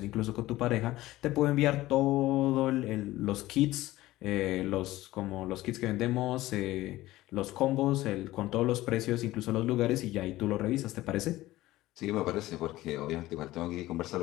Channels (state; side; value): quieter; right; 16.8 dB